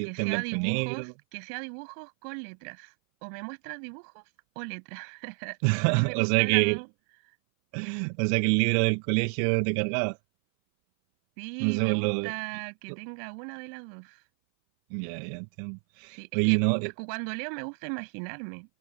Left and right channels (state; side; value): silent; left; 57 dB below the other